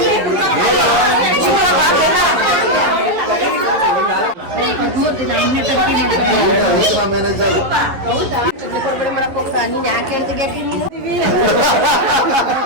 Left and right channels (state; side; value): late; left; 11 ms